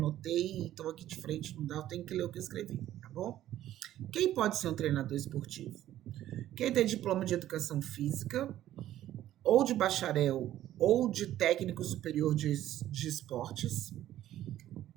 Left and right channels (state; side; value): quieter; left; 12.9 dB